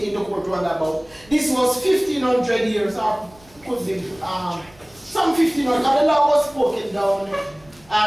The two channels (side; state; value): right; noise; rumble, 28 dB below the sound